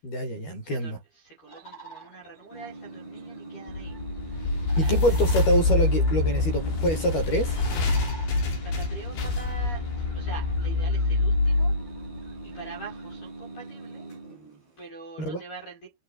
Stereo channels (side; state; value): right; late; 13 ms